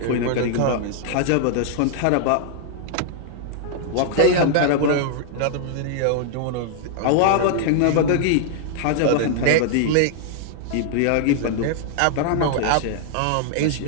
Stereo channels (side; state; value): both; different; correlation -0.01